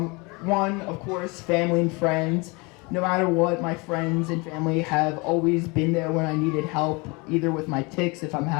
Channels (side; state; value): right; quieter; 27.7 dB